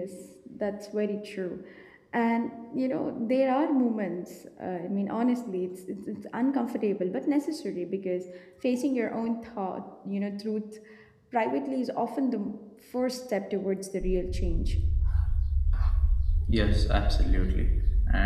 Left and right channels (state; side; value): identical; both; correlation 1.00